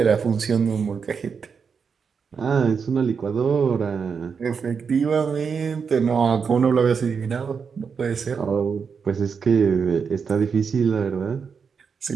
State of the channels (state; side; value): quieter; left; 6.0 dB